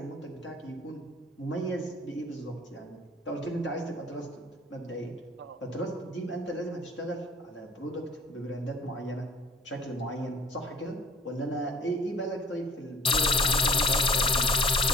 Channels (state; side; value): normal; both; correlation 0.50